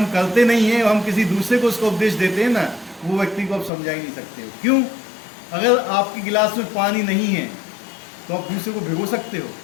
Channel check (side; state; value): right; drops out; at 3.7 s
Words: करते नहीं हैं, हम किसी दूसरे को उसका उपदेश देते हैं ना, वो व्यक्ति को आप समझा ही नहीं सकते हो। क्यों? अगर आपके गिलास में पानी नहीं है तो आप दूसरे को भिगो सकते हो?